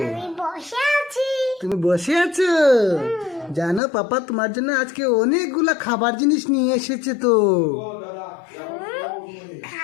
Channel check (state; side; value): drops out; right; at 3.8 s